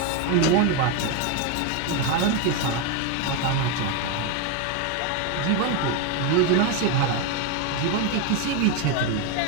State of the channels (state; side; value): different; both; correlation 0.02